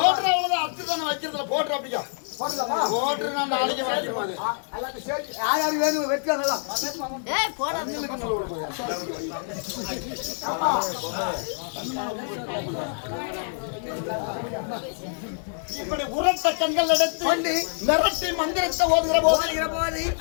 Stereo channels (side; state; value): right; silent; digital silence